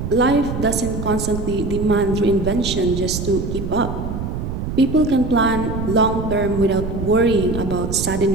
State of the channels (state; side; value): noise; right; rumble, 5 dB below the sound